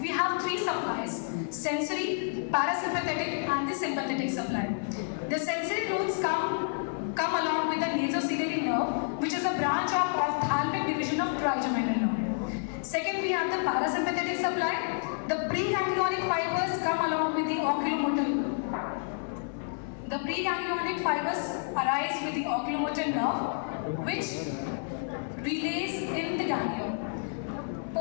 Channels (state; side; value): silent; right; 56 dB below the other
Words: have three supplies, sensory, parasympathetic and the sympathetic supply. The sensory nodes come along with the nasociliary nerve, which is a branch of ophthalmic division of trigeminal nerve. Second, we have the parasympathetic supply. The preganglionic fibers come along with the oculomotor preganglionic fibers arise with the oculomotor nerve, which relays in the ganglion.